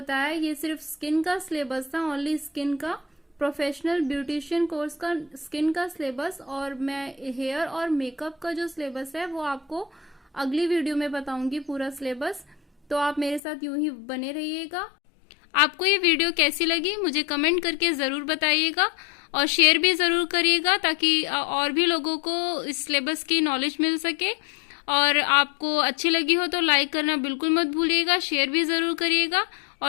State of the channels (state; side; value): drops out; right; at 13.4 s